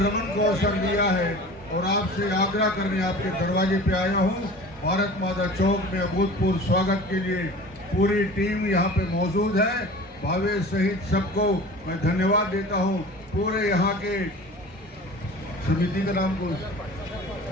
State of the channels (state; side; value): normal; both; correlation 0.40